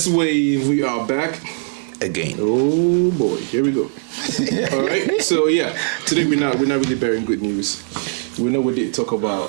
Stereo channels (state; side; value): silent; left; digital silence